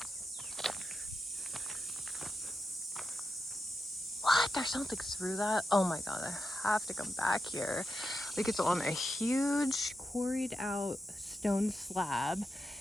What? there's something through that. Oh my god, I have to come back here. Like, it's on a huge quarried out stone slab,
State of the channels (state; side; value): normal; both; correlation 0.88